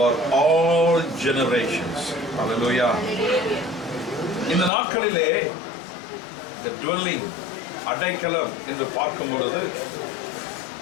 all generations. Hallelujah. இந்த நாட்களிலே the dwelling அடைக்கலம் என்று பார்க்கும் பொழுது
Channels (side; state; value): right; drops out; at 4.7 s